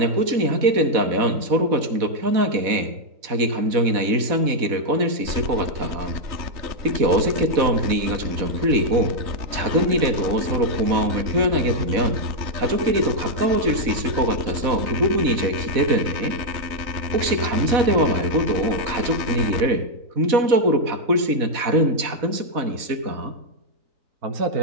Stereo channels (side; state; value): left; late; 4.1 ms